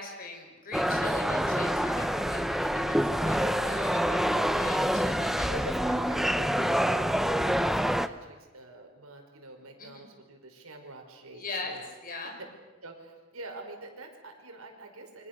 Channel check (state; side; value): normal; both; correlation 0.88